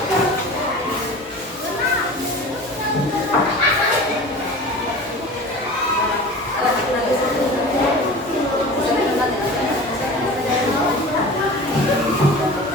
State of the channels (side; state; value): both; normal; correlation 0.37